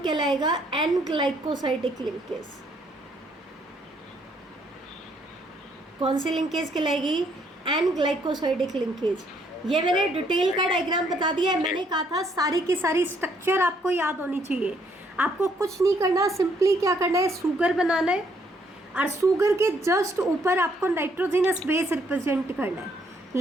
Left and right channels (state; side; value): normal; both; correlation 0.69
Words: कहलाएगा एन ग्लाइकोसाइडिक लिंकेज। कौन सी लिंकेज कहलाएगी, एन ग्लाइकोसाइडिक लिंकेज। ये मैंने डिटेल का डायग्राम बता दिया है। मैंने कहा था सारी की सारी स्ट्रक्चर आपको याद होनी चाहिए। आपको कुछ नहीं करना, सिंपली क्या करना है, शुगर बनाना है और शुगर के जस्ट ऊपर आपको नाइट्रोजिनस बेस रिप्रेजेंट करना है।